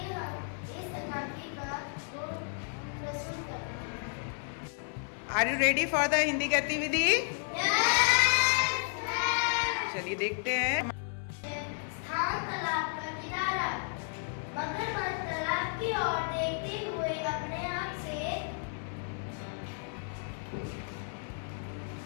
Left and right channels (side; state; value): right; silent; 56 dB below the other